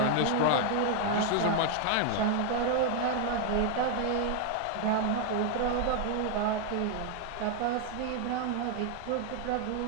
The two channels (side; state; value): both; different; correlation 0.00